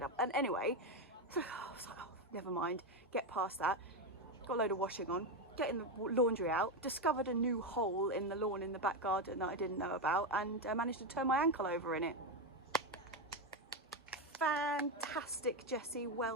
up. And anyway, I was like, oh, never mind, get past that. Got a load of washing on, getting the laundry out, discovered a new hole in the lawn in the back garden that I didn't know about, and managed to turn my ankle over in it. Fantastic, Jessie,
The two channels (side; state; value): both; normal; correlation 0.09